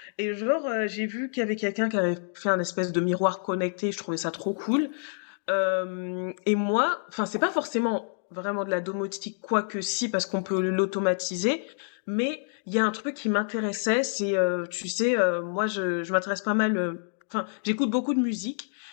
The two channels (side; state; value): right; silent; digital silence